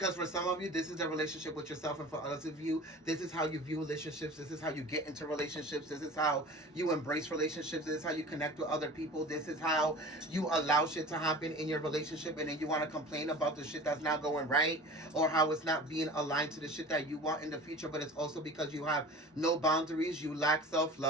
for some of you, this is the relationship with yourself, and for others of you, this is how you view relationships. This is how you get into relationships. This is how you embrace relationships. This is how you connect with other people. This is how you allow shit to happen in your relationship, and then you want to complain about the shit that's not going right, or how it's not being aligned to the shit that you want in the future. But it's also because you have no boundaries. You lack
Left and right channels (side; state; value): both; normal; correlation 0.39